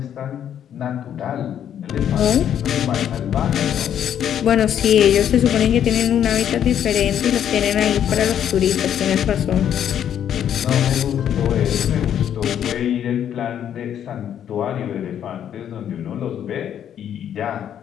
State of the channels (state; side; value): quieter; right; 9.7 dB